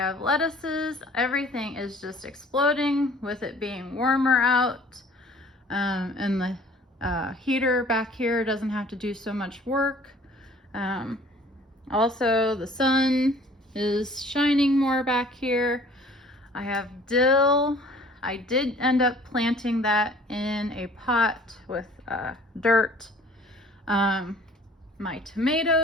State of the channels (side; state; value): both; normal; correlation 0.52